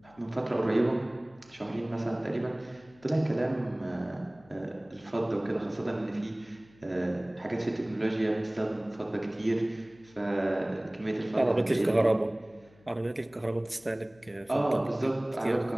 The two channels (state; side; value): noise; left; hum, 28 dB below the sound